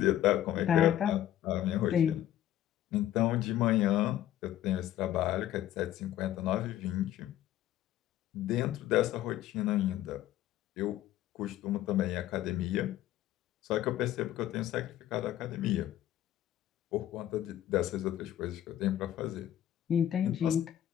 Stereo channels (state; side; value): quieter; right; 12.4 dB